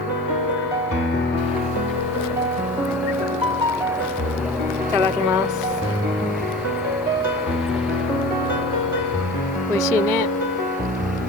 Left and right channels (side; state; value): both; normal; correlation 0.37